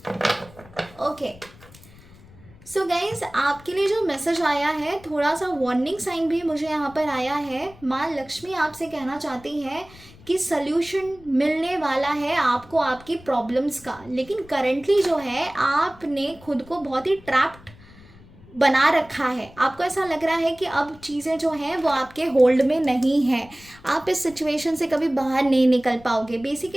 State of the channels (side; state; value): left; noise; rumble, 23 dB below the sound